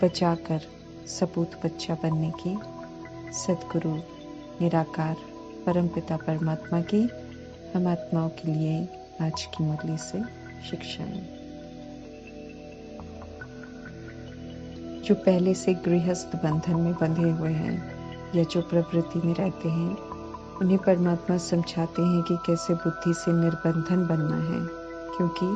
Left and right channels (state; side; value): identical; both; correlation 1.00